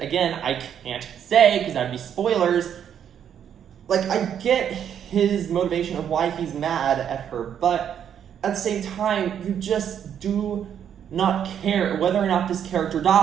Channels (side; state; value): left; quieter; 8.9 dB